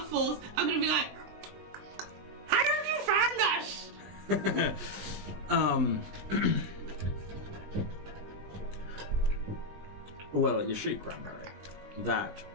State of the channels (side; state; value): left; late; 20 ms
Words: I'm going to be like, how did you find us? Well, you see, Cranberry, that